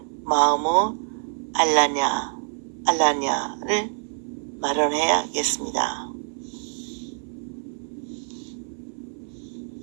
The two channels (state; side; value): silent; left; 58 dB below the other